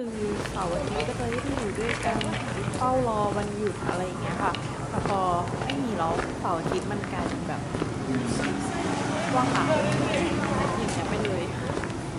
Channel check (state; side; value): identical; both; correlation 1.00